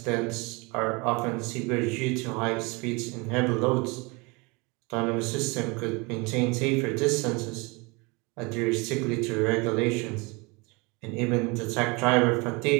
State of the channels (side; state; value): left; quieter; 27.6 dB